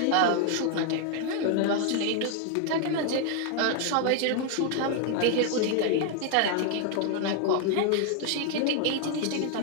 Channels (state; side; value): different; both; correlation 0.00